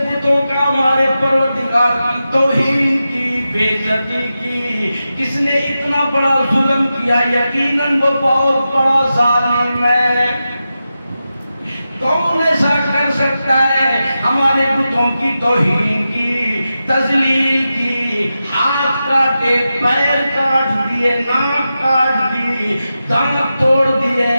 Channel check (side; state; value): both; inverted; correlation -0.91